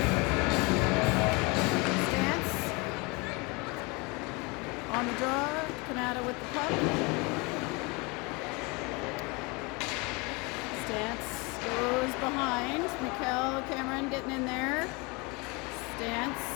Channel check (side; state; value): right; quieter; 27.9 dB